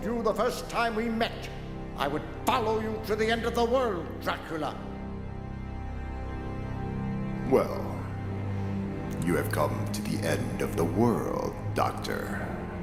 you the first time we met, I would follow you to the end of the world, Dracula. Well, you have come to the end of the world, Doctor.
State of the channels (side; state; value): both; identical; correlation 1.00